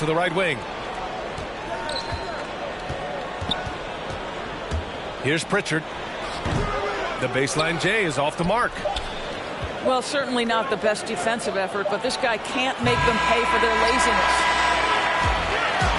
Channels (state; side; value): identical; both; correlation 1.00